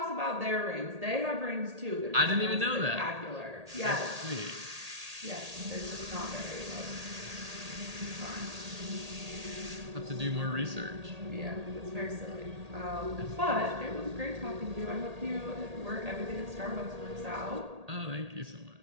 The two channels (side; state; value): left; late; 1.8 ms